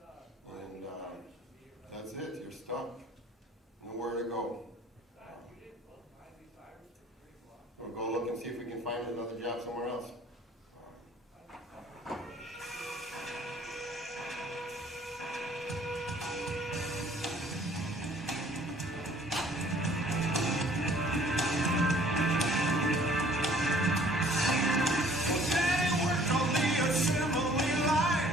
And that's it, you're stuck. Nowhere to go. We'll go look and see if we can find another job somewhere else.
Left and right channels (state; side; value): normal; both; correlation 0.56